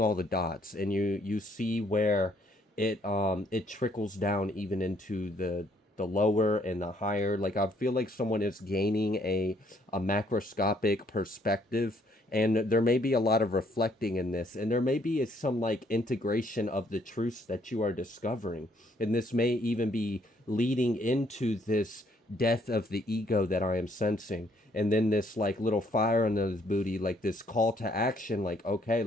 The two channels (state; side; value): normal; both; correlation 0.67